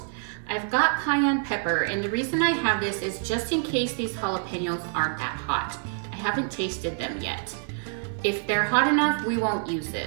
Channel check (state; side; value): silent; left; 60 dB below the other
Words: I've got cayenne pepper, and the reason I have this is just in case these jalapenos aren't that hot. I haven't tasted them yet. If they're hot enough, we won't use